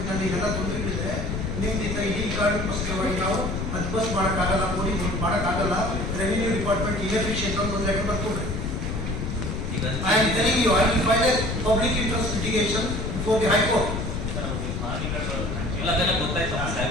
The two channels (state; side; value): noise; left; rumble, 3 dB below the sound